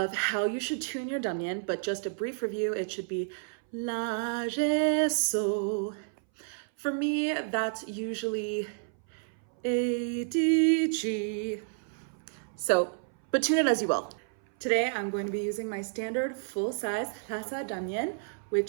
how you should tune your Dranyen, but just a brief review, it should be La, Re, So. For me, that's usually A, D, G. So, but tune it as you will. Today, I'm going to be using my standard full-size Lhasa Dranyen,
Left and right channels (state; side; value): silent; left; 57 dB below the other